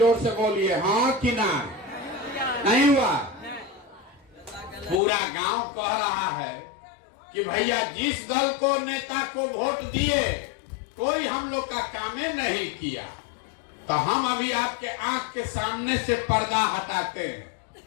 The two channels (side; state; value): right; drops out; at 5.0 s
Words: से बोलिए हाँ कि ना। नहीं हुआ? पूरा गांव कह रहा है कि भैया जिस दल को, नेता को वोट दिए, कोई हम लोग का कामे नहीं किया। तो हम अभी आपके आंख के सामने से पर्दा हटाते हैं,